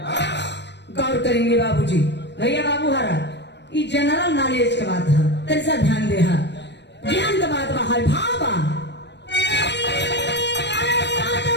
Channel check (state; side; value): late; right; 0.50 ms